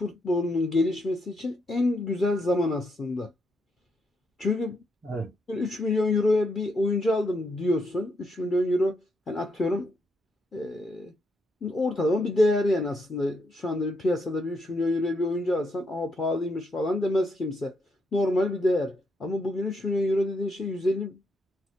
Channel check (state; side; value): normal; both; correlation 0.78